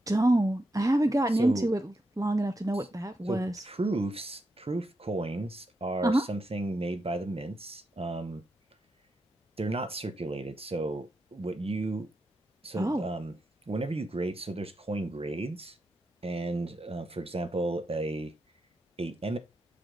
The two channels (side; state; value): both; normal; correlation 0.85